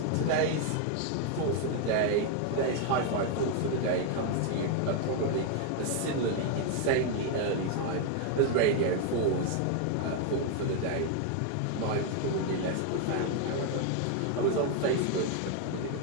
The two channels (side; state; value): both; different; correlation 0.01